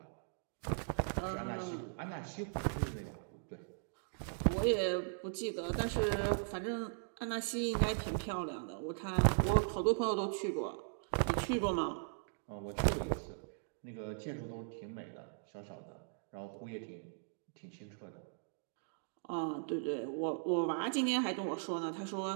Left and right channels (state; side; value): silent; left; digital silence